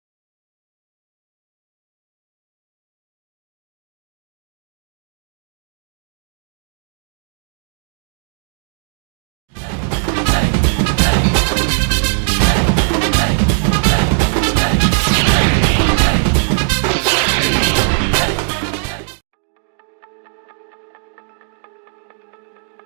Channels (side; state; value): left; silent; digital silence